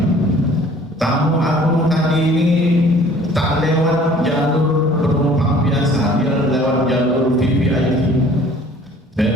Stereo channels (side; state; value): both; normal; correlation 0.52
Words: Tamu agung tadi ini tak lewat jalur penumpang biasa, dia lewat jalur VVIP,